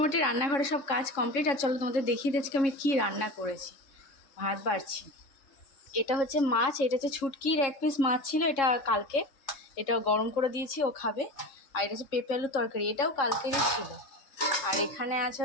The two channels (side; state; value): right; late; 3.6 ms